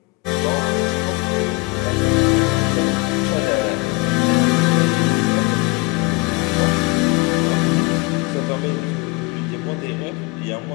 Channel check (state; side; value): quieter; right; 26.0 dB